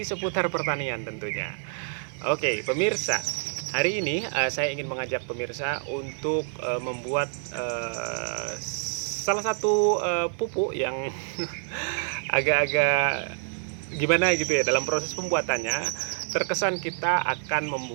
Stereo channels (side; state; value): left; silent; 60 dB below the other